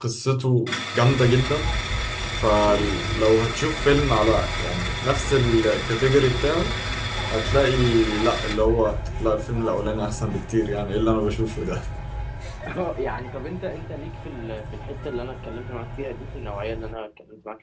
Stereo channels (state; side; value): identical; both; correlation 1.00